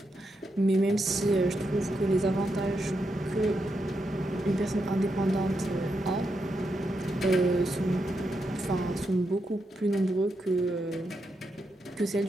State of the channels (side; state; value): both; normal; correlation 0.84